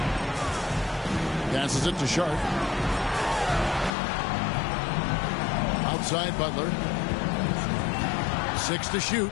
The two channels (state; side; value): drops out; right; at 3.9 s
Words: Passes it to Sharp. Outside Butler. 6 to shoot.